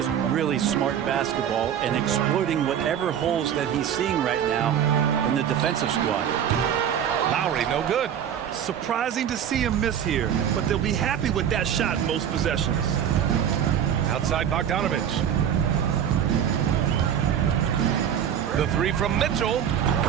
really smart basketball and exploiting whatever holes that he's seeing right now in the defensive squad. Lowry, no good. Surprising to see him miss here, but they'll be happy with that shot in most possessions. Outside Bogdanovic. The 3 from Mitchell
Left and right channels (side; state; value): left; quieter; 9.2 dB